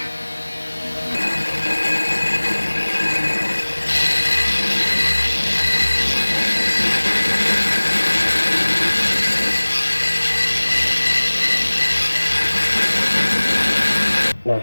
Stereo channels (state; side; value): inverted; both; correlation -1.00